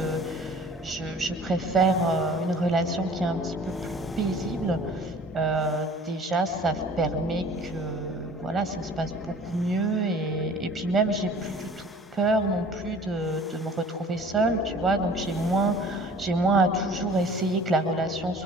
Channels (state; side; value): normal; both; correlation 0.48